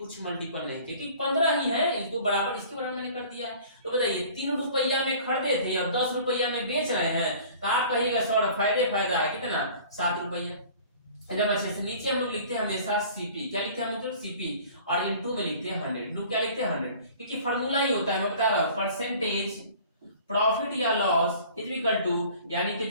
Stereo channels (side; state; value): both; inverted; correlation -0.47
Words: मल्टीपल नहीं किया, क्योंकि 15 ही है, इसको बराबर इसके बराबर मैंने कर दिया है। तो बताइए 3 रुपया में खरीदे थे और 10 रुपया में बेच रहे हैं, तो आप कहिएगा सर फायदा है कितना 7 रुपया। जब अच्छे से नीचे हम लोग लिखते हैं हमेशा सीपी, क्या लिखते हैं हम लोग सीपी, और इनटू में लिखते हैं 100, इनटू क्या लिखते हैं 100, क्योंकि फॉर्मूला ही होता है, मैं बता रहा हूँ, परसेंटेज प्रॉफिट या लॉस इज इक्वल टू, यानी कि